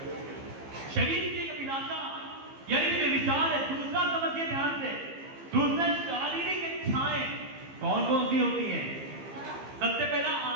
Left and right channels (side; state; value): left; late; 15 ms